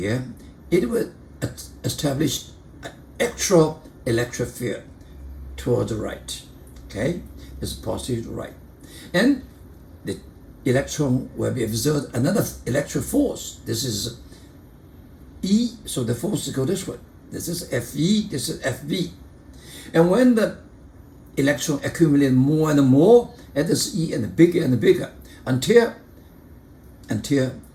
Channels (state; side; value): identical; both; correlation 1.00